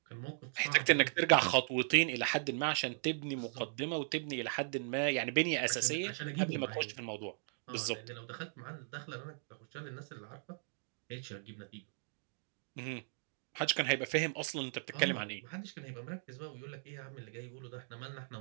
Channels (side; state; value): left; silent; digital silence